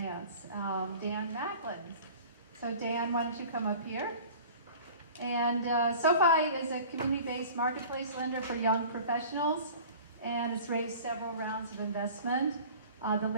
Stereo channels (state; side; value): inverted; both; correlation -0.43